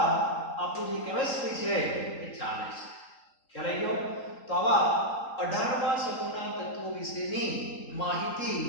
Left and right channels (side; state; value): right; late; 3.8 ms